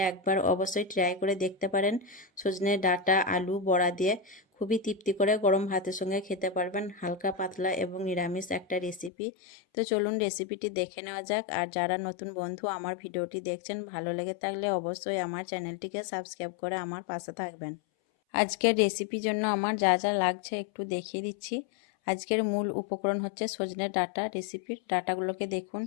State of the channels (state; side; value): drops out; right; at 9.1 s